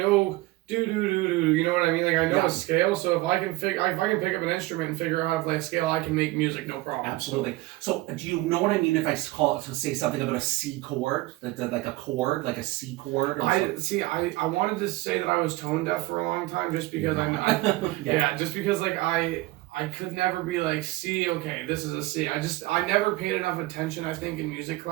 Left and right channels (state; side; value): quieter; left; 19.4 dB